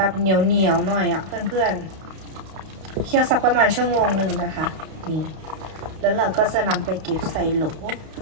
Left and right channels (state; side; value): late; left; 32 ms